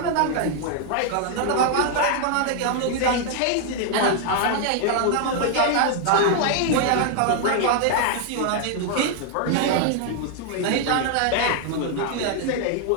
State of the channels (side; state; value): both; different; correlation 0.00